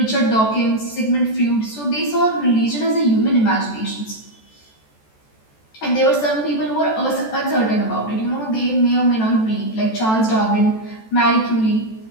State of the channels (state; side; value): late; right; 14 ms